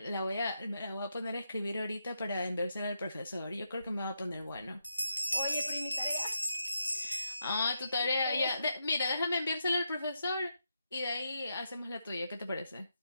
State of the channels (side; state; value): both; inverted; correlation -0.83